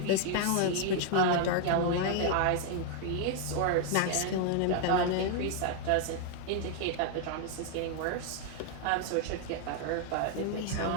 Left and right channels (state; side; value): different; both; correlation 0.00